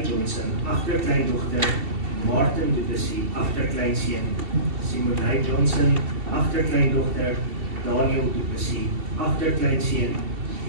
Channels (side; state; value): left; late; 2.7 ms